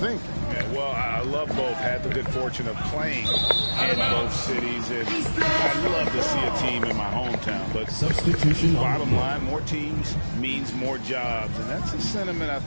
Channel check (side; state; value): both; inverted; correlation -1.00